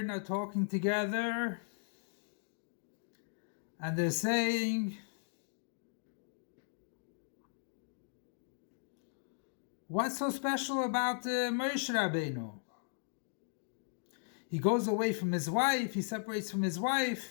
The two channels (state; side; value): silent; right; digital silence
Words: are talking together, and they're saying, "What's so special about Moshe Rabbeinu? He goes away from his wife. He separates from his